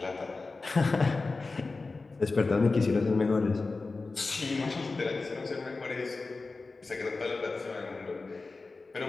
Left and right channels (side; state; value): right; quieter; 3.8 dB